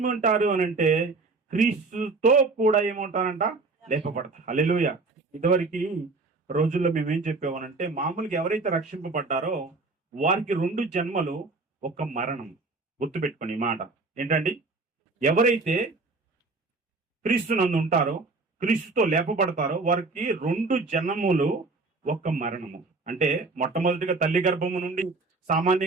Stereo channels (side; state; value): left; quieter; 3.7 dB